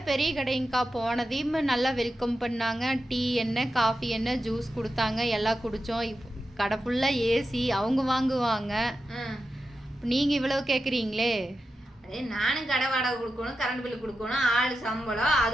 பெரிய கடைங்கக்கா. போனதையும் நல்லா வெல்கம் பண்ணாங்க. டீ என்ன, காஃபி என்ன, ஜூஸ் கொடுத்தாங்க, எல்லாம் குடித்தோம். கடை ஃபுல்லாக ஏசி, அவங்க வாங்குவாங்க. நீங்கள் இவ்வளோ கேட்குறீங்களே. நானும் கடை வாடகை கொடுக்கணும், கரண்ட் பில்லு கொடுக்கணும், ஆள் சம்பளம்,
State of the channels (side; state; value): both; normal; correlation 0.90